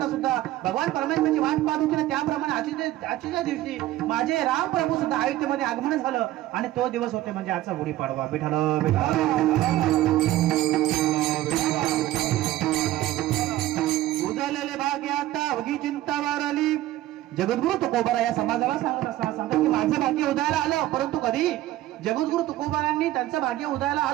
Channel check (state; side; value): quieter; left; 15.0 dB